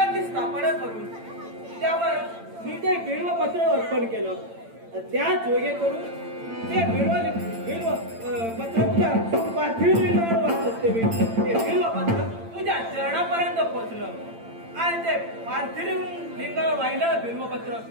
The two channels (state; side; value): late; left; 8.9 ms